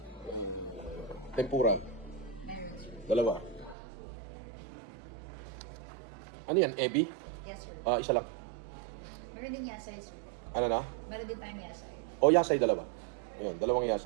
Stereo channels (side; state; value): left; drops out; at 3.8 s